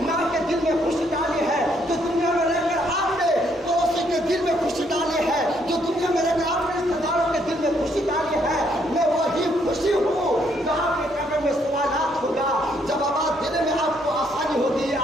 ماں کے دل میں خوشی ڈالی ہے، جو دنیا میں رہ کر آپ نے پڑوسی کے دل میں خوشی ڈالی ہے، جو دنیا میں رہ کر آپ نے رشتے داروں کے دل میں خوشی ڈالی ہے، میں وہی خوشی ہوں جہاں کے قبر میں سوالات ہوگا، جوابات دینے میں آپ کو آسانی ہوگی،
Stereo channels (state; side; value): normal; both; correlation 0.71